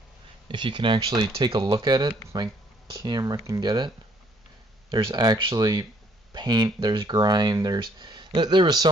If you can actually take a look at it, if my camera can get it, there's actually paint, there's grime, there was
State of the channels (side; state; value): both; normal; correlation 0.65